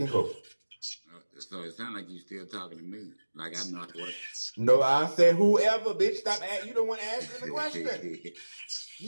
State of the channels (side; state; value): both; inverted; correlation -1.00